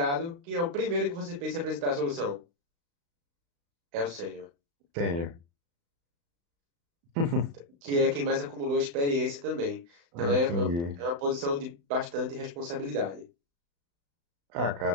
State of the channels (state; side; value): late; left; 35 ms